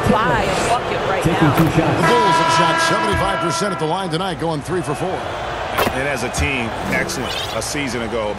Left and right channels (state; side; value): identical; both; correlation 1.00